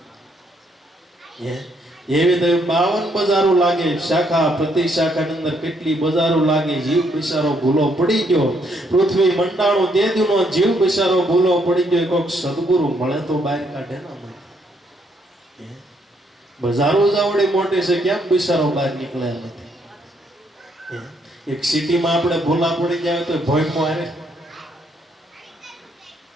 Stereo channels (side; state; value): both; normal; correlation 0.72